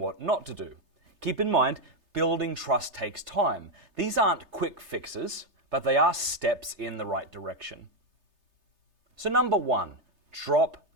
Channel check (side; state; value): left; late; 3.3 ms